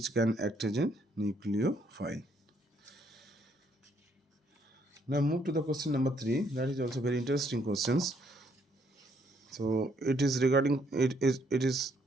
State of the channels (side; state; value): both; normal; correlation 0.70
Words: can act as a nucleophile. Now move to the question number 3. That is also very interesting questions. So it is related